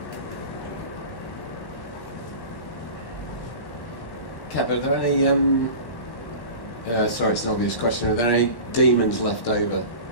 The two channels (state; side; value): late; right; 1.1 ms